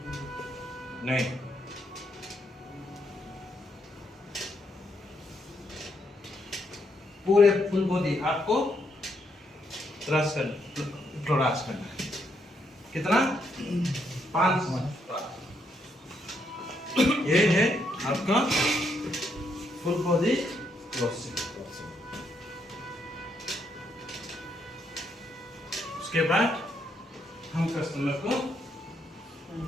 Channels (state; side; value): normal; both; correlation 0.76